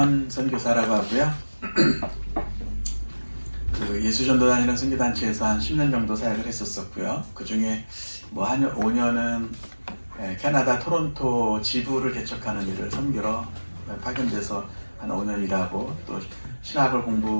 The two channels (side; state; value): both; inverted; correlation -1.00